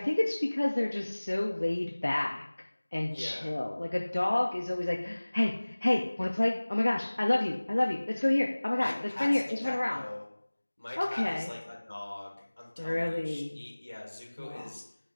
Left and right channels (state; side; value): inverted; both; correlation -1.00